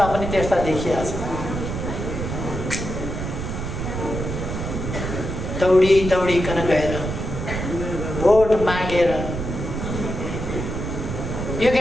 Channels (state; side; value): noise; right; rumble, 4 dB below the sound